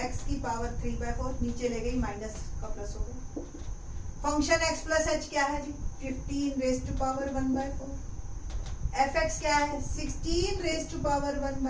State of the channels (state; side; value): identical; both; correlation 1.00